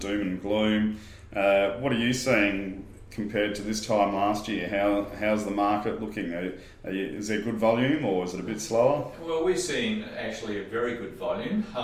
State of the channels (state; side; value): identical; both; correlation 1.00